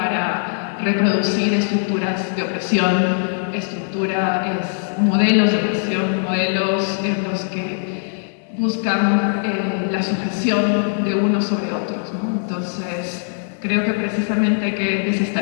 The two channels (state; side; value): silent; right; digital silence